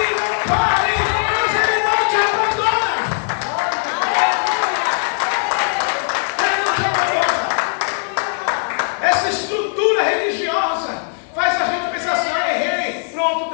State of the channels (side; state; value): right; silent; digital silence